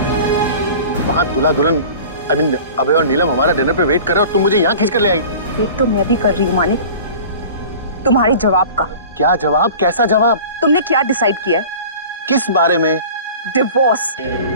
वहां दूल्हा दुल्हन अभय और नीलम हमारा डिनर पे वेट कर रहे हो और तुम मुझे यहाँ खींच कर ले आई। वेट तो मैं भी कर रही हूँ मानिक, तुम्हारे जवाब का। क्या जवाब? कैसा जवाब? तुमने क्या डिसाइड किया है? किस बारे में? डिवोर्स।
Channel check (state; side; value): inverted; both; correlation -0.41